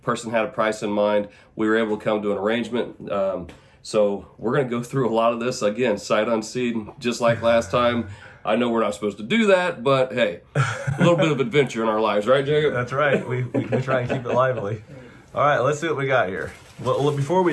Person had a price in mind. We were able to come to an arrangement. So we're going to go through a lot of this again, sight unseen, just like last time. I know we're not supposed to do that, but hey, a little bit of adventure in our lives, right, Jacob? That's right. We try and keep it lively. All right, let's see what we got here. Well, before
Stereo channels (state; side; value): identical; both; correlation 1.00